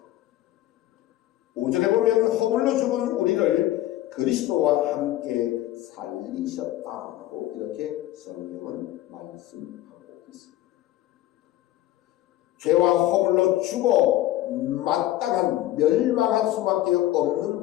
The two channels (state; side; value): quieter; right; 14.6 dB